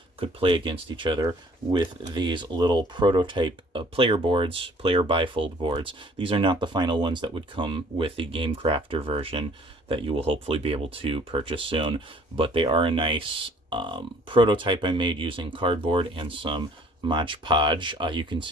could play against each other with these little prototype player boards, player bifold boards. These are not the final ones that would come with the Game Crafter version that you will hopefully be able to purchase soon, but they are a nice prototype I made using cardboard and some Mod Podge. You can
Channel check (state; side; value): normal; both; correlation 0.56